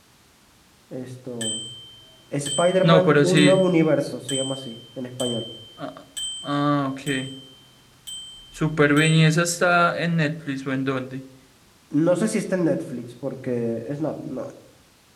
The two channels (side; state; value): both; identical; correlation 1.00